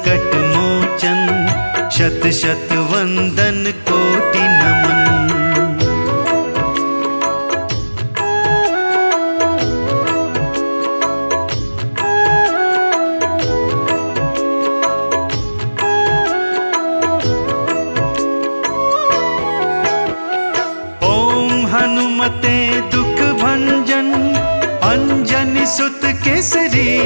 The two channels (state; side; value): inverted; both; correlation -1.00